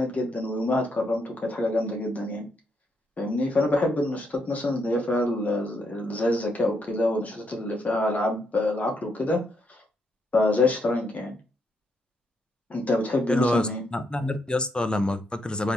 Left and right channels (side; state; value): both; normal; correlation 0.77